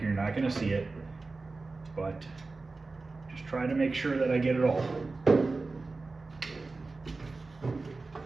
you're not going to see it, but just try to make sure that I get it all. Oh,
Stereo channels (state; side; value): quieter; left; 3.7 dB